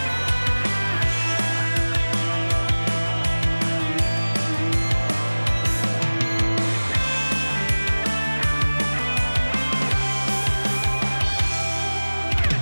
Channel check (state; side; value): inverted; both; correlation -1.00